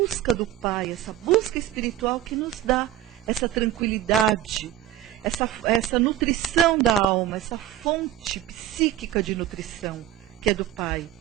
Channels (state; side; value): quieter; left; 11.7 dB